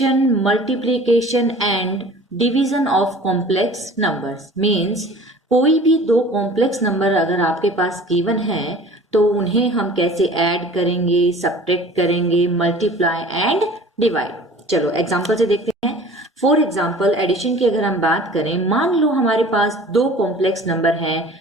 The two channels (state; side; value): normal; both; correlation 0.45